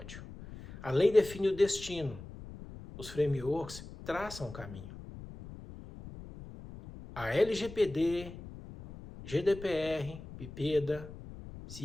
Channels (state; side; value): noise; left; rumble, 14 dB below the sound